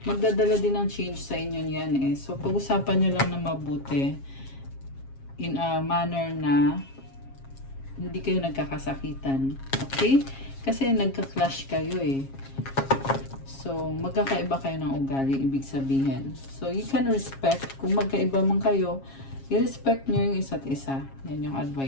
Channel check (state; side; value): late; right; 7.4 ms